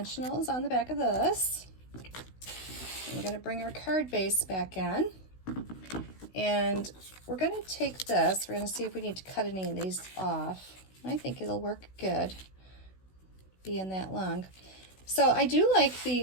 on the back of this. And we're going to bring our card base back in. And we're going to take this. We're going to see if we need to cut any of these off. I think it'll work good being that long. So I do like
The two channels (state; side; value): late; right; 16 ms